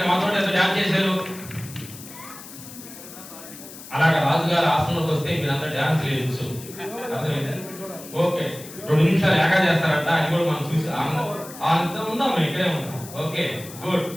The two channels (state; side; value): noise; left; hiss, 15 dB below the sound